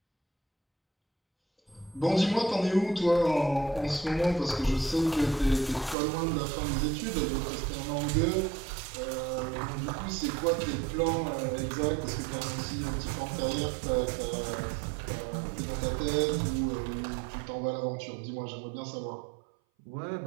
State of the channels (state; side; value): drops out; left; at 6.0 s